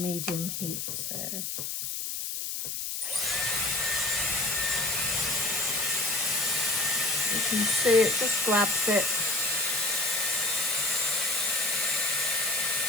medium heat. So you can see it just grabs it.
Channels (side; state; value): left; noise; hiss, 4 dB below the sound